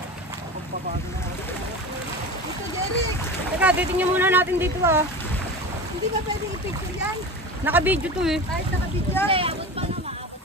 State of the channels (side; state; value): both; normal; correlation 0.30